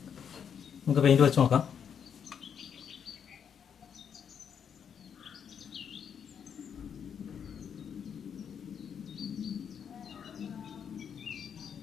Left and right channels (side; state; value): right; quieter; 7.7 dB